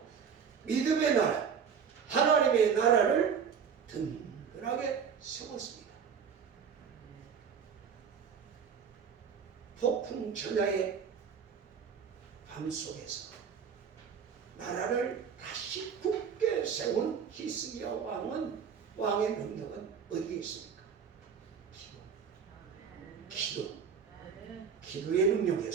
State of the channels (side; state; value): left; quieter; 6.8 dB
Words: 믿음의 나라, 하나님의 나라를 든든하게 세웠습니다. 폭풍 전야의 밤 속에서 나라를 다시 굳게 세운 히스기야 왕의 능력은 어디에 있습니까? 기도의